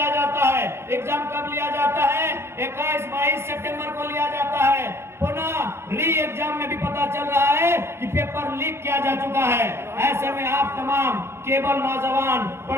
जाता है। एग्जाम कब लिया जाता है? 21-22 सितंबर को लिया जाता है। पुनः री एग्जाम में भी पता चल रहा है कि पेपर लीक किया जा चुका है। ऐसे में आप तमाम केवल नौजवान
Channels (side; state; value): left; late; 0.12 ms